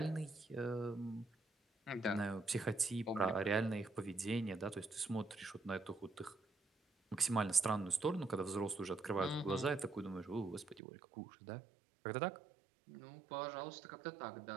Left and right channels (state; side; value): drops out; left; at 10.8 s